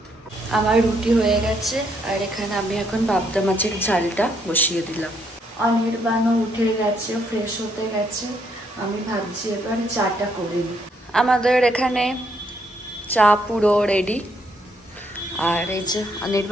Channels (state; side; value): normal; both; correlation 0.72